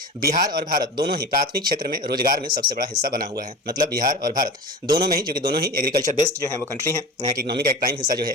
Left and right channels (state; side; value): normal; both; correlation 0.32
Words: बिहार और भारत दोनों ही प्राथमिक क्षेत्र में रोजगार में सबसे बड़ा हिस्सा बना हुआ है। मतलब बिहार और भारत दोनों में ही, जो कि दोनों ही एग्रीकल्चर बेस्ड जो है वो कंट्री है, यहाँ की इकोनॉमी का एक प्राइम हिस्सा जो है